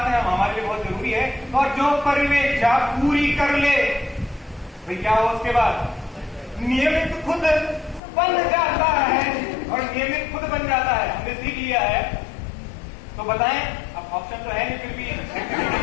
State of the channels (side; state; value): right; drops out; at 8.0 s